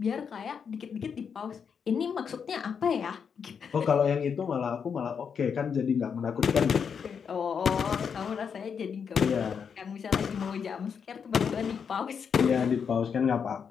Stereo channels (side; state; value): right; quieter; 6.7 dB